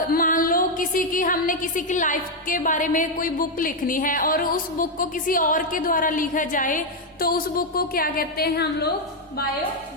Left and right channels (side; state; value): both; normal; correlation 0.02